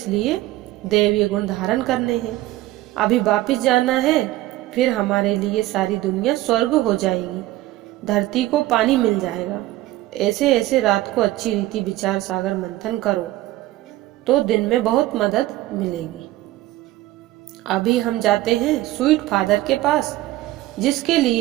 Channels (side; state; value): left; quieter; 16.6 dB